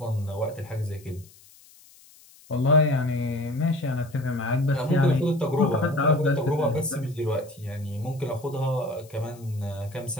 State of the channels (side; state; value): left; noise; hiss, 25 dB below the sound